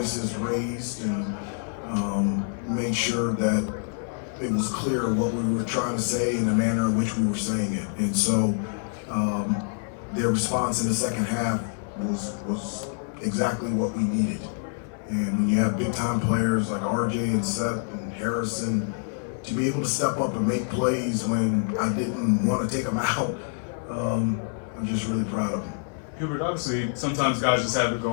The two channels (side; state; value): right; silent; 61 dB below the other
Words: raised, and made sure that it was clear what we were trying to say and the manner in which we were saying it. And so their response in the second half was exactly what we needed. And when you have big time players like RJ and Seth and Harrison, to be able to step up and make plays when I didn't want to take them out, I'm just really proud of them. Hubert, obviously, sometimes guys just have it